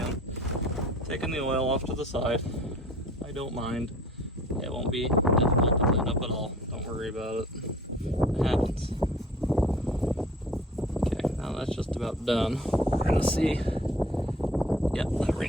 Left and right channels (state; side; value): normal; both; correlation 0.49